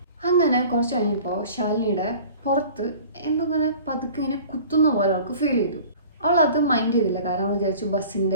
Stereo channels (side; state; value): both; inverted; correlation -0.44